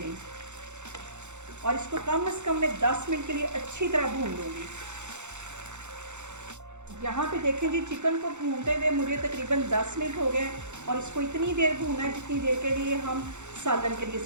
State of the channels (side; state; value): left; late; 0.84 ms